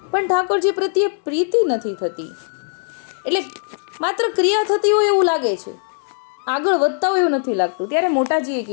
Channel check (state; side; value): silent; right; digital silence